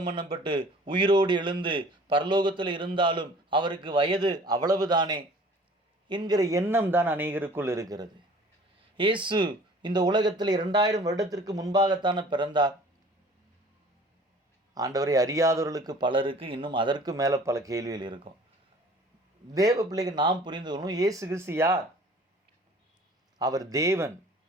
பண்ணப்பட்டு உயிரோடு எழுந்து பரலோகத்தில் இருந்தாலும் அவருக்கு வயது அவ்வளவுதானே என்கிற எண்ணம் தான் அநேகருக்குள் இருக்கிறது. இயேசு இந்த உலகத்தில் 2000 வருடத்திற்கு முன்பாகத்தானே பிறந்தார். ஆண்டவரை அறியாதவர்களுக்கு பலருக்கு இன்னும் அதற்கு மேலே பல கேள்விகள் இருக்கும். தேவ பிள்ளைகள் நாம் புரிந்து கொள்ளணும், இயேசு கிறிஸ்து யார்? அவர் தேவன்.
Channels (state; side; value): normal; both; correlation 0.49